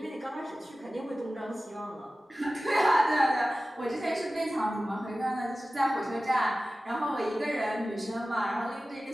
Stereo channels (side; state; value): both; normal; correlation 0.96